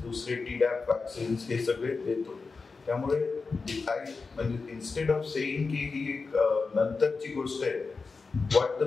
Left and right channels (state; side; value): quieter; right; 4.4 dB